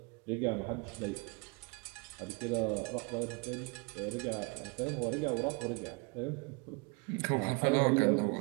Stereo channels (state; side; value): quieter; left; 30.6 dB